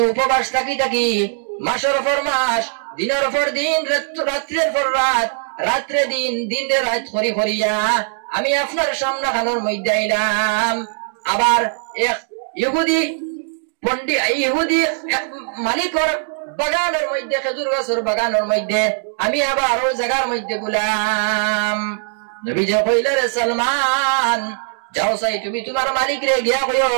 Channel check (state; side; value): silent; left; digital silence